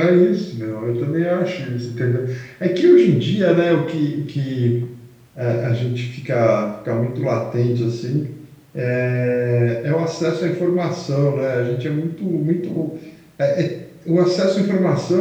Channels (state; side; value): identical; both; correlation 1.00